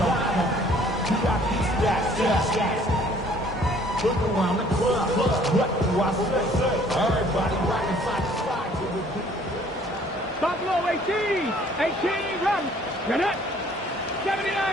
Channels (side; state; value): both; normal; correlation 0.57